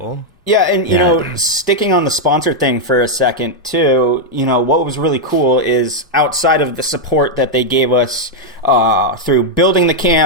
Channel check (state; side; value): normal; both; correlation -0.01